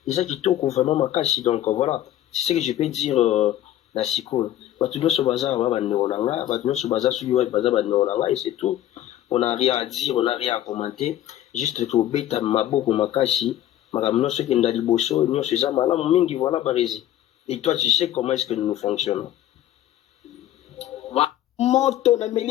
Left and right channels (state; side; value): quieter; right; 12.6 dB